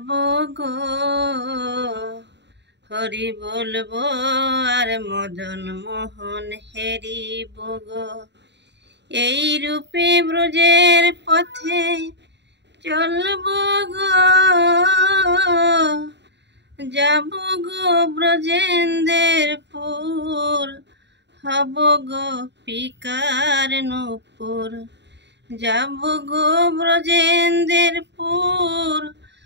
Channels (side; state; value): left; late; 0.51 ms